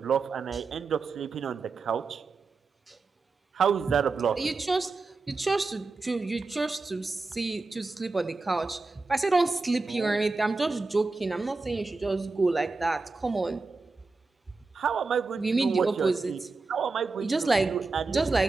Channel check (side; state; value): left; quieter; 3.9 dB